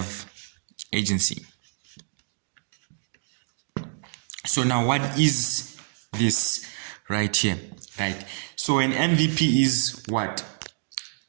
agency. So now what is this right here, right? So an MVP is what?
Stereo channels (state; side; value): silent; left; digital silence